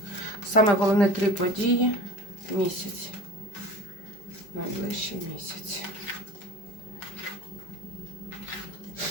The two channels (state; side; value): late; right; 5.1 ms